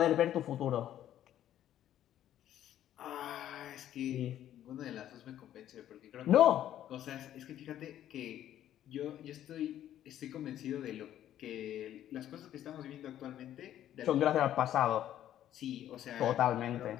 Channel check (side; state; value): right; quieter; 11.7 dB